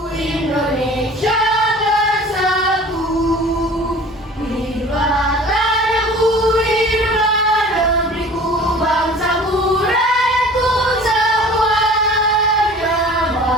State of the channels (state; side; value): normal; both; correlation 0.44